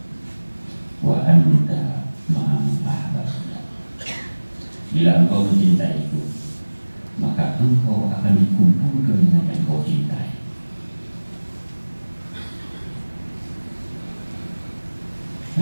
wa anta ma'aman ahbabta. Bila engkau mencintai itu, maka engkau akan dikumpulkan dengan yang engkau cintai.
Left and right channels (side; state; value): both; inverted; correlation -1.00